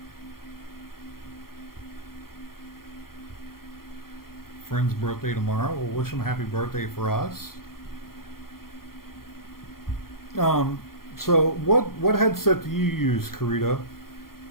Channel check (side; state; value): right; late; 0.92 ms